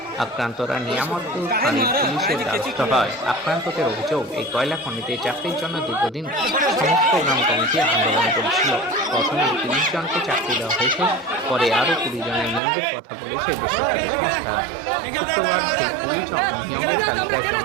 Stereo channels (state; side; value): drops out; left; at 12.6 s